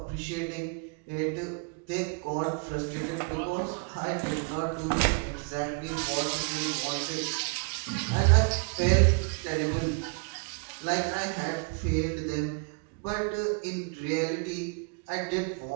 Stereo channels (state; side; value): quieter; left; 36.0 dB